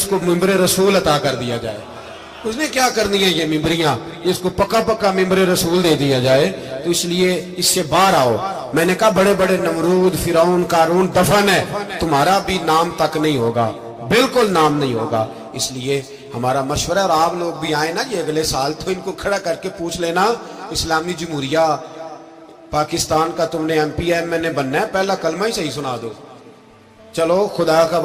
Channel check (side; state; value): both; identical; correlation 1.00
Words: کو ممبر رسول عطا کر دیا جائے، اس نے کیا کرنی ہے یہ ممبریاں جس کو پکا پکا ممبر رسول دے دیا جائے، تو اس لیے اس سے باہر آؤ۔ میں نے کہا بڑے بڑے نمرود، فرعون، قارون دفن ہے، تمہارا بھی نام تک نہیں ہوگا، بالکل نام نہیں ہوگا۔ اس لیے ہمارا مشورہ، اور آپ لوگ بھی آئیں نا یہ اگلے سال، تو ان کو کھڑا کر کے پوچھ لینا اسلامی جمہوریہ پاکستان کا تم نے MP بننا ہے، پہلا کلمہ ہی صحیح سنا دو، چلو خدا کا